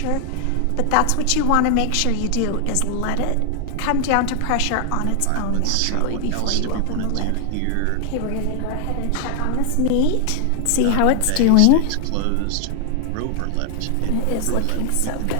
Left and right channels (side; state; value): both; different; correlation 0.00